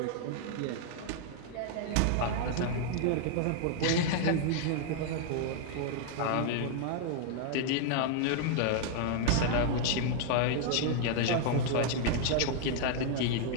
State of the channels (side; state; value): both; different; correlation 0.00